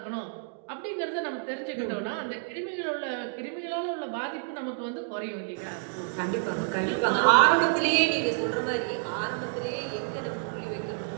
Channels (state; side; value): silent; left; digital silence